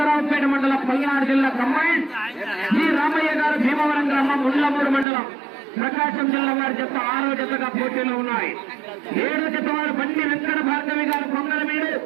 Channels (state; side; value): drops out; left; at 5.1 s